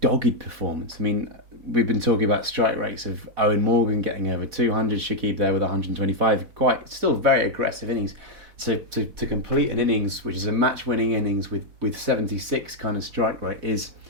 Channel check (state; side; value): late; left; 4.1 ms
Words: dogged performance. I mean, we've been talking about strike rates of Eoin Morgan getting over 200, Shakib there with 125, still very aggressive innings. So to complete an innings, which is a match-winning innings with 76 kind of strike rate, is